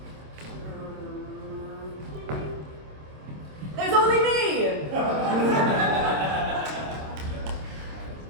There's only me!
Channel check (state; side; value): late; left; 26 ms